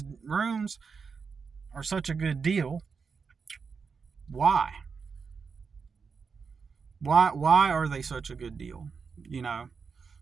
rooms are such a good deal. Why are they such a good deal?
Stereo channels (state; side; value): quieter; left; 5.4 dB